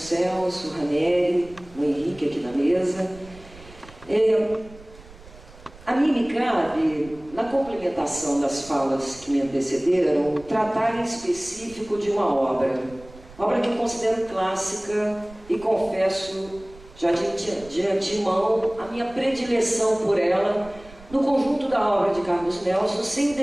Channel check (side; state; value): right; noise; rumble, 21 dB below the sound